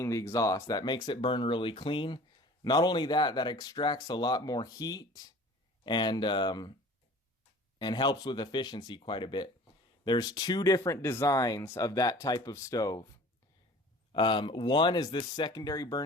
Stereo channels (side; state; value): both; normal; correlation 0.45